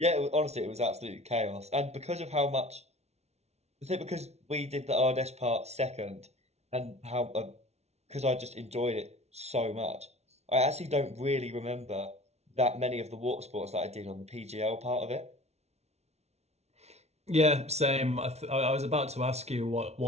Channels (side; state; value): left; late; 0.31 ms